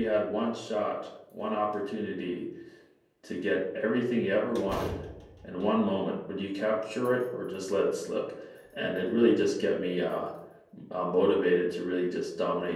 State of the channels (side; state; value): both; identical; correlation 1.00